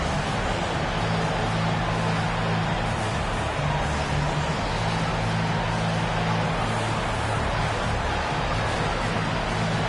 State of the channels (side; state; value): both; identical; correlation 1.00